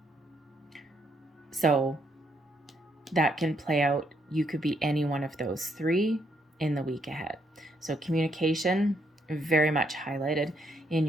So that can play out. You could be any one of those 3 in the week ahead. So communication, very much highlighted in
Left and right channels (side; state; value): both; normal; correlation 0.74